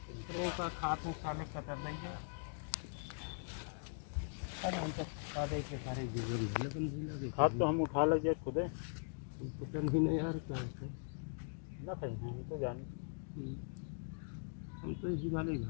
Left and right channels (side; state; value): right; silent; digital silence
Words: रो का खाते साले कतर देंगे अरे हम तो सादे के सारे जीवन लेकिन भी लगे खाद तो हम उठा लेंगे खुद पता नहीं ना यार क्या होता है ना कहीं हम तो जानते हम तो इसी वाले